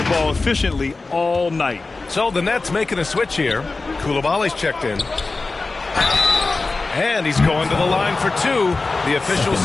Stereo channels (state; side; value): quieter; right; 3.6 dB